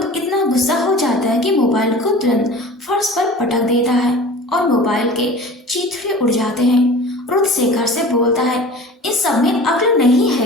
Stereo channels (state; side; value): normal; both; correlation 0.40